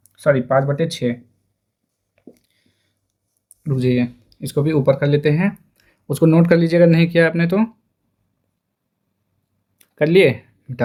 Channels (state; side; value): identical; both; correlation 1.00